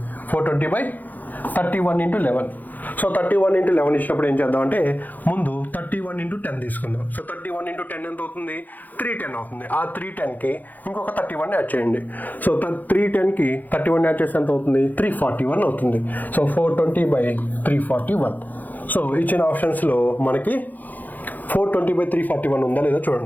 into 11. So 31 into 11 ఇచ్చినప్పుడు ఏం చేద్దాం అంటే, ముందు 31 ఇంటూ 10 తీసుకుందాం. సో 31 ఇంటూ 10 ఎంత అవుతుంది, 310 అవుతుంది. ఆ 310కి ఇంకొక 31 యాడ్ చేయండి. సో 310కి 31 యాడ్ చేస్తే ఎంత అవుతుంది, 341 అవుతుంది. సో 420/341. సో ఇచ్చిన ఆప్షన్స్లో మనకి 420/341 ఉందా లేదా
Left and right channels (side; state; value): right; late; 0.083 ms